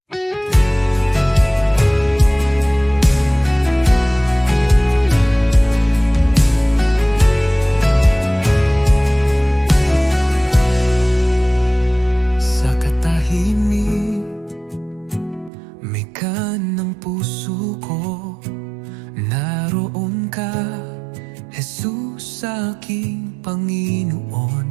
Sa katahimik, may ng puso ko, naroon ka, Jesus, aking Panginoon.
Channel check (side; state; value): left; drops out; at 15.5 s